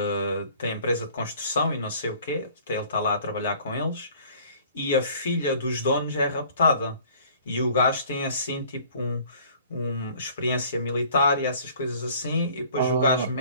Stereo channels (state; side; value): inverted; both; correlation -0.53